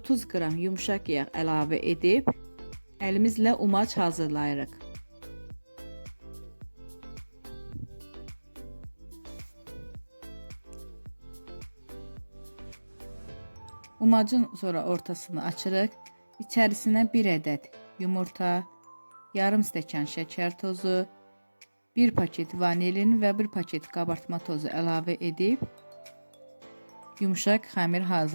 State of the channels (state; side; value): inverted; both; correlation -1.00